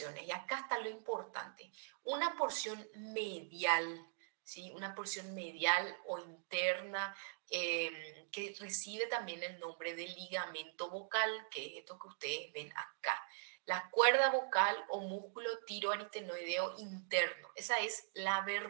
y acá está lo importante. Una porción medial, ¿sí? Una porción medial o interna que recibe también el nombre de ligamento vocal, que es esto que ustedes ven acá. La cuerda vocal o músculo tiroaritenoideo interno. Esa es la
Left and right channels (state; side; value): silent; left; digital silence